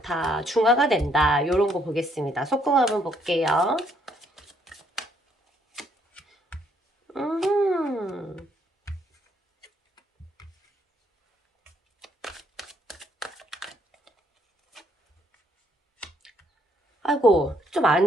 중화가 된다. 요런 거 보겠습니다. 속궁합 한번 볼게요. 아이고, 좀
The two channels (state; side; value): normal; both; correlation 0.69